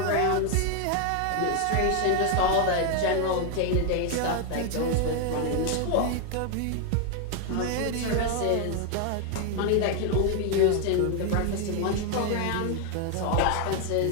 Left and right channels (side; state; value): both; different; correlation 0.01